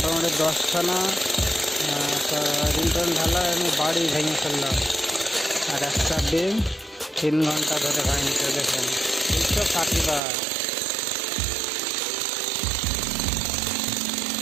10খানা রিন্টন ঢালা আমি বাড়ি ভেঙে ফেললাম, আর একটা ডিম 3 ঘন্টা ধরে ভাঙছে। দেখেন 260 বার।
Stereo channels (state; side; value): drops out; left; at 10.2 s